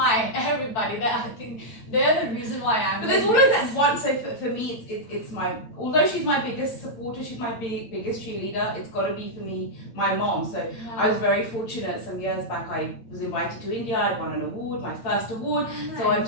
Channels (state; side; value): late; right; 8.7 ms